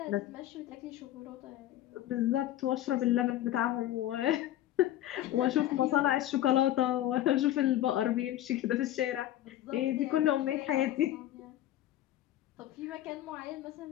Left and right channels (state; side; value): quieter; right; 13.2 dB